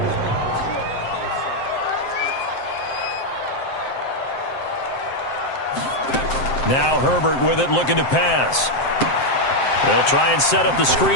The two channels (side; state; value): right; late; 7.6 ms